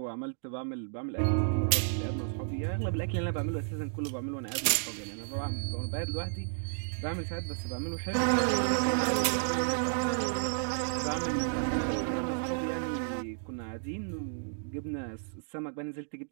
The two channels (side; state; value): left; silent; digital silence